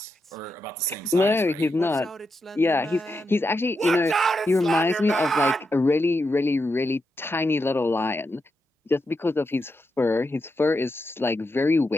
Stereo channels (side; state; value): both; normal; correlation 0.85